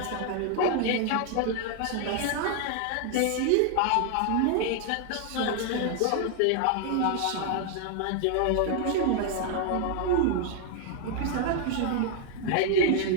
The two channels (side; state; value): both; different; correlation 0.00